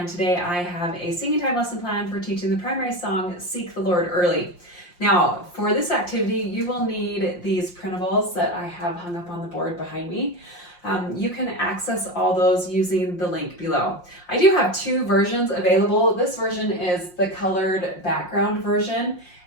today I have a singing time lesson plan for teaching the primary song, Seek the Lord Early. Now, for this activity, you will need these printables that I have hung up on the board behind me. You can access all those using the link below. I do have two versions available. This version is the colored background version,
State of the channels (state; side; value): late; right; 5.6 ms